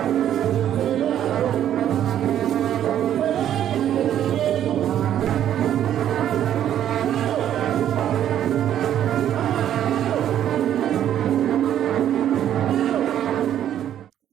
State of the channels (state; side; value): quieter; left; 10.8 dB